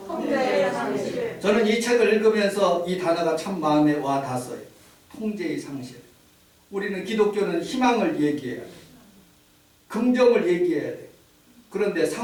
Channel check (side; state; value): both; identical; correlation 1.00